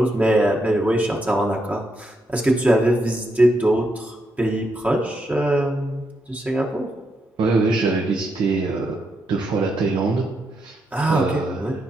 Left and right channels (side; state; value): both; normal; correlation 0.81